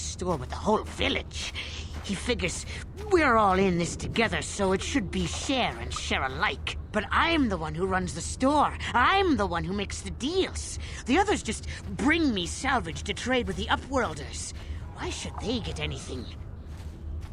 with the whole village. He figures we're all in this together, so it should be share and share alike. But I'm the one who runs the store. I'm the one who makes the deals. The others just bring me salvage to trade with the Upworlders. Why should they get anything?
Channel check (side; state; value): both; identical; correlation 1.00